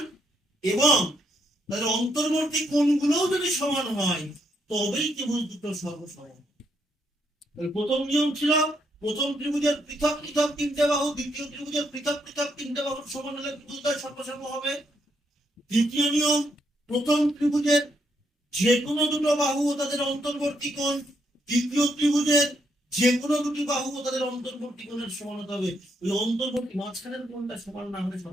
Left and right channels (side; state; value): both; normal; correlation 0.76